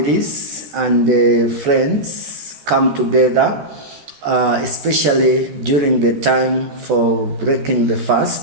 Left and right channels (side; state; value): left; late; 13 ms